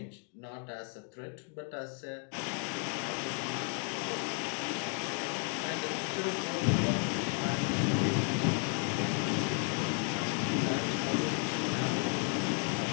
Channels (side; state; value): right; quieter; 37.7 dB